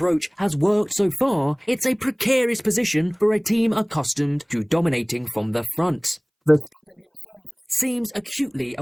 has worked so far, it's a precarious position for a team accustomed to dominating from the front. Verstappen seems acutely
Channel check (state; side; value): identical; both; correlation 1.00